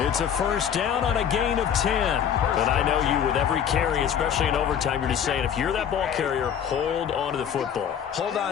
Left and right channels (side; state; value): right; quieter; 8.6 dB